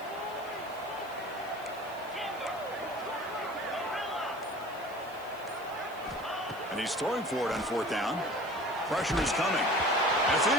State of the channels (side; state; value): right; noise; hiss, 23 dB below the sound